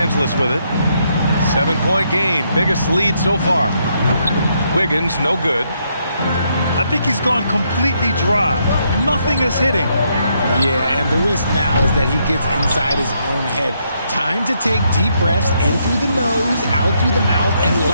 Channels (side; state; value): both; inverted; correlation -0.75